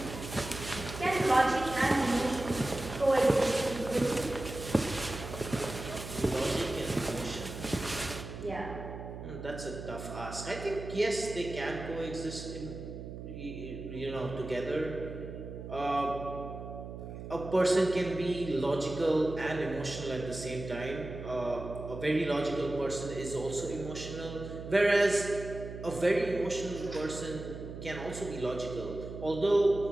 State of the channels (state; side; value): noise; right; hum, 10 dB below the sound